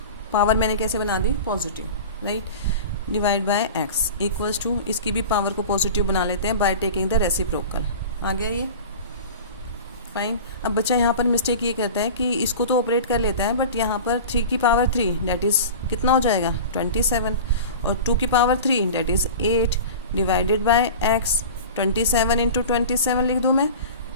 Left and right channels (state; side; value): inverted; both; correlation -0.34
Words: power मैंने कैसे बना दी, positive, right, divide by x equals to, इसकी भी पावर को पॉजिटिव बना लेते हैं बाय टेकिंग द रेसिप्रोकल। आ गया ये, फाइन। अब बच्चा यहाँ पर मिस्टेक ये करता है कि इसको तो ऑपरेट कर लेता है बट यहाँ पर 3 की पावर 3 डेट इज़ कितना हो जाएगा, 27, और 2 की power 3 that is 8 divided by x। 27 into 27 लिख दूँ मैं,